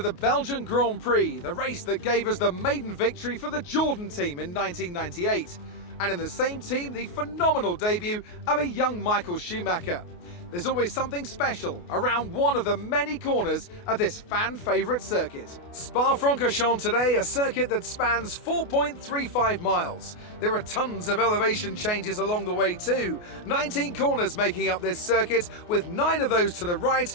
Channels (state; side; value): late; right; 28 ms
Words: the Belgian Grand Prix, the race that gave us the maiden victory for the Jordan team in 1998. And in the same team, the phenomenal debut of a young Michael Schumacher. There's always something special around one of the many corners of this fan-favourite circuit. Spa-Francorchamps today, a circuit that spans 4.35 miles. There are tons of elevation changes along the way too. 19 corners making up this circuit, with 9 of those to the right